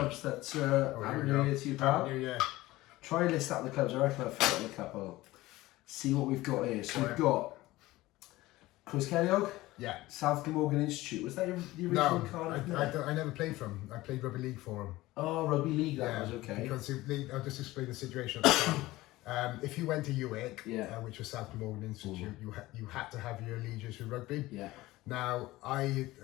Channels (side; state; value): right; quieter; 18.2 dB